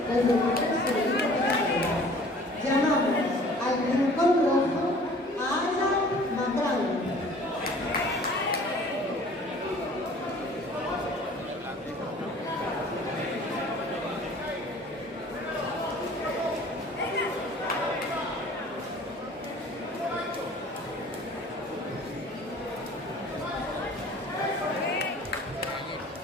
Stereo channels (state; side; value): normal; both; correlation 0.49